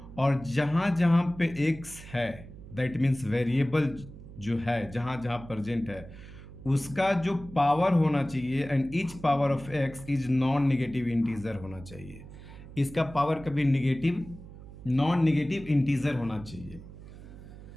और जहाँ जहाँ पे x है दैट मीन्स वेरिएबल जो है जहाँ जहाँ प्रेजेंट है उसका जो पावर होना चाहिए, and each power of x is non negative integer होना चाहिए। इसका पावर कभी नॉन नेगेटिव इंटीजर होना चाहिए,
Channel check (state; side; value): noise; right; hum, 16 dB below the sound